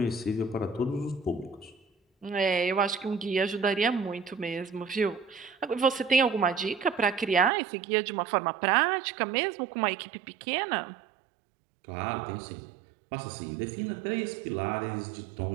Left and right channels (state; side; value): drops out; left; at 7.5 s